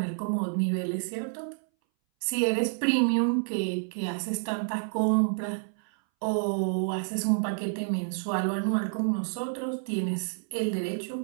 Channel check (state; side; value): silent; left; 59 dB below the other